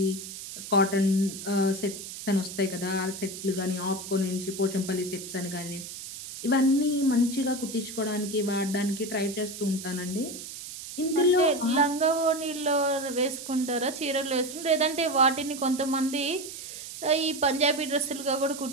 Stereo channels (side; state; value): right; noise; hiss, 10 dB below the sound